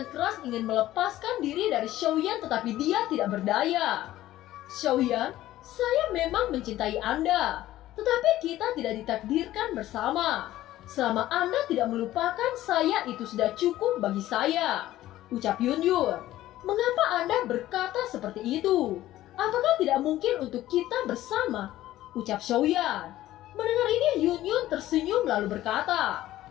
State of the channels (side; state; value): right; quieter; 14.6 dB